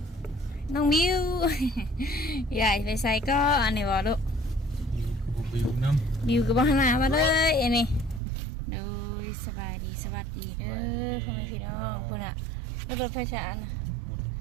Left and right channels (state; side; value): drops out; left; at 8.2 s